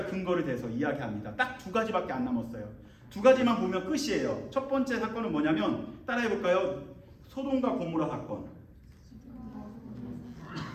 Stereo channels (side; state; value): both; identical; correlation 1.00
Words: 근거를 대서 이야기합니다. 딱 두 가지밖에 안 남았어요. 두 가지만 보면 끝이에요. 첫 번째 사건은 뭐냐면 따라해볼까요? 소돔과 고모라 사건.